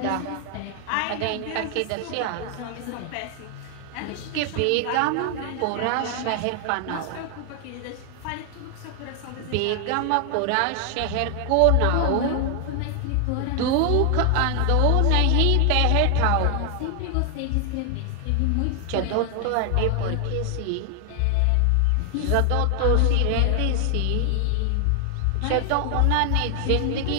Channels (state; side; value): different; both; correlation 0.00